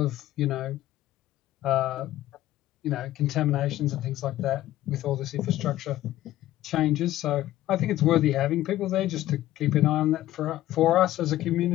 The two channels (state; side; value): quieter; right; 14.6 dB